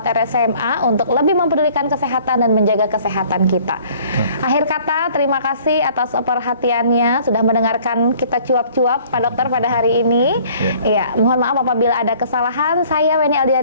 RSMA untuk lebih mempedulikan kesehatan dan menjaga kesehatan kita. Akhir kata, terima kasih atas perhatiannya sudah mendengarkan kita cuap-cuap Pak Dokter pada hari ini. Ya, mohon maaf apabila ada kesalahan. Saya Weni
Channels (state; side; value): inverted; both; correlation -0.55